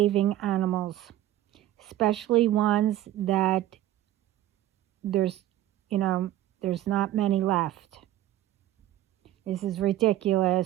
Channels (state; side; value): quieter; left; 13.7 dB